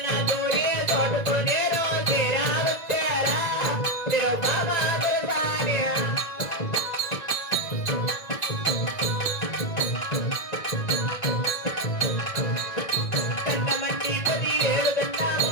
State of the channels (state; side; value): late; right; 1.9 ms